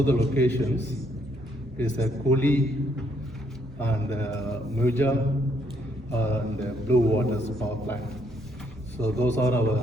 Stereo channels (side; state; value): both; normal; correlation 0.71